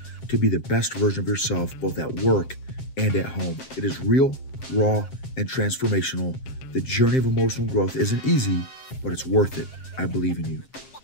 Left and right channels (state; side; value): late; right; 7.6 ms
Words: to be the best version of yourself, both at work and at home. It is real, raw, and transformational. The journey of emotional growth isn't easy, but it's worth it. I believe in you.